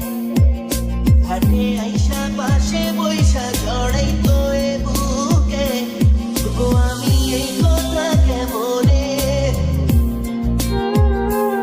ঘাটে আইসা পাশে বৈশা জড়াইতো এ বুকে, তবু আমি এই কথা কেমনে।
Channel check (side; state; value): both; identical; correlation 1.00